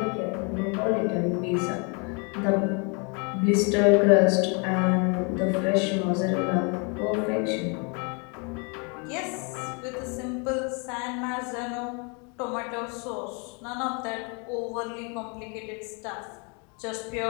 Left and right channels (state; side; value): quieter; right; 34.3 dB